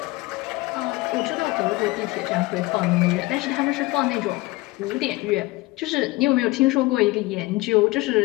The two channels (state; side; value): quieter; right; 21.3 dB